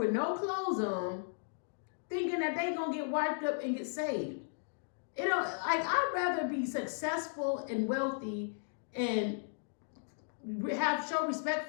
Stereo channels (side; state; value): right; silent; digital silence